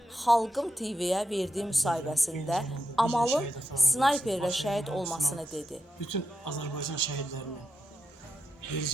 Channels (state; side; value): normal; both; correlation 0.87